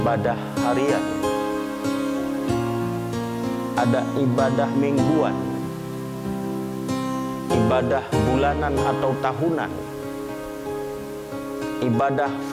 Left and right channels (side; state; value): both; identical; correlation 1.00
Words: harian, ada ibadah mingguan, ibadah bulanan atau tahunan, ibadah